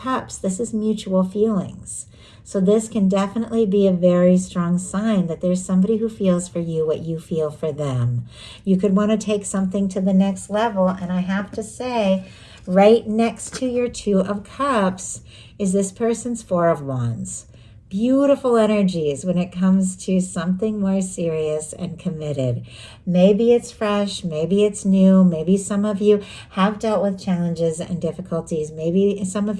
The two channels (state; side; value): identical; both; correlation 1.00